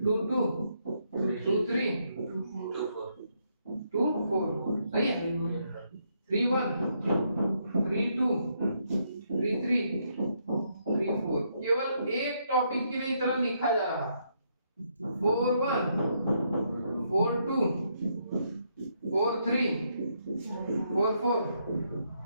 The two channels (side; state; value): both; inverted; correlation -0.76